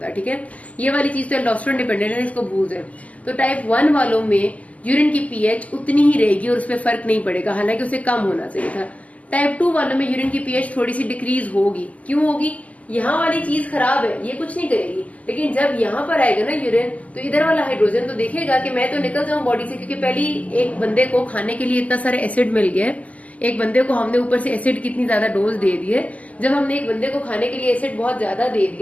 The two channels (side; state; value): right; late; 0.073 ms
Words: ठीक है, ये वाली चीज तो एल्डोस्टेरोन डिपेंडेंट है, इसको भूल जाए। तो टाइप 1 वालों में यूरिन की पीएच उतनी ही रहेगी और उस पर फर्क नहीं पड़ेगा, हालांकि उसे कम होना चाहिए था। टाइप 2 वालों में यूरिन की पीएच थोड़ी सी डिक्रीज होगी। क्यों होगी? यहाँ वाली चीज खराब है, ये कुछ नहीं करेगी, लेकिन जब यहाँ पर आएगा ना यूरिन, तो इधर वाला हाइड्रोजन तो देखेगा कि मैं तो निकल जाऊं बॉडी से, क्योंकि पहली एक बंदे को खाने के लिए इतना सारा एसिड मिल गया है, एक बंदे को हमने ऊपर से एसिड कितनी ज्यादा डोज दे दी है। जब हमने एक बंदे को खाने के लिए एसिड बहुत ज्यादा दे